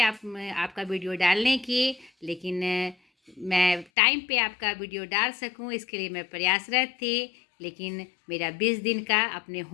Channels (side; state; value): right; drops out; at 3.9 s